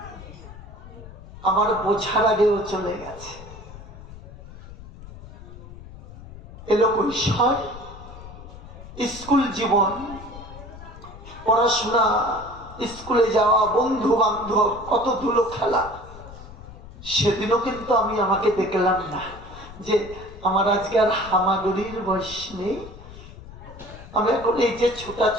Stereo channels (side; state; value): left; noise; rumble, 16 dB below the sound